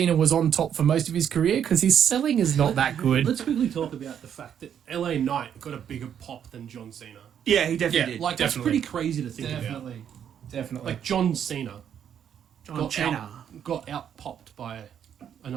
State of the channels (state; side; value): quieter; left; 8.9 dB